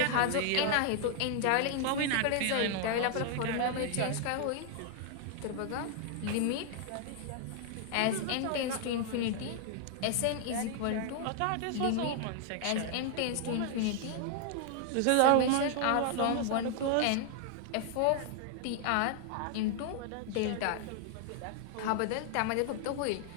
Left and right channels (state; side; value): different; both; correlation 0.00